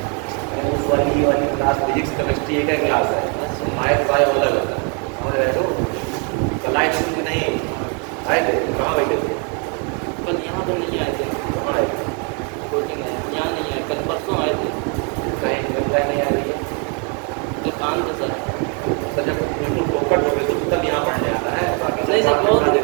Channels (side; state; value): left; quieter; 36.6 dB